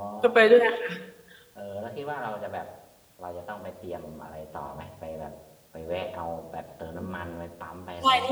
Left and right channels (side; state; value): both; identical; correlation 1.00